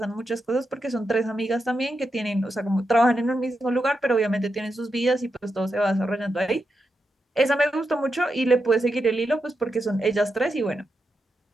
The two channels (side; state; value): both; normal; correlation 0.86